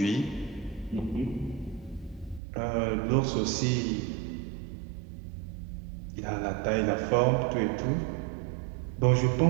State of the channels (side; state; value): left; drops out; at 2.4 s